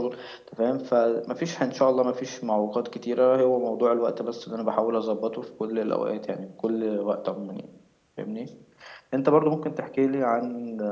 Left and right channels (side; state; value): both; identical; correlation 1.00